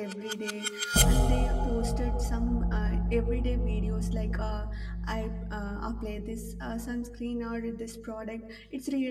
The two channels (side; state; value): both; identical; correlation 1.00